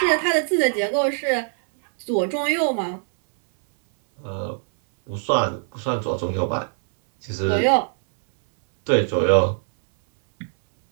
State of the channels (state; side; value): silent; left; 64 dB below the other